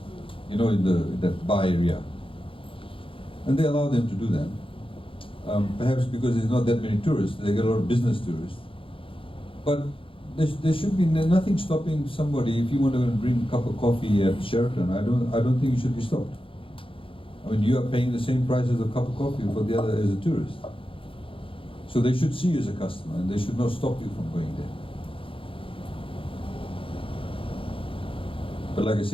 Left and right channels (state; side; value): late; right; 0.26 ms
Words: you know, in that bar area. And they allow them to do that. Perhaps because there's not that many tourists, they get a lot of business tourists. But there should be nothing stopping somebody, if you want to bring a cup of coffee at Sheraton, I don't think you should be stopped. I mean, you are paying the same price as a cup of coffee for the other as a tourist. So they should see you as a customer, and they should not stop you from going there. But like I